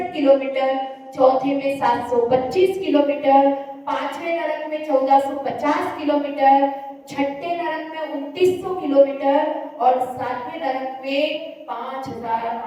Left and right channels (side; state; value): both; identical; correlation 1.00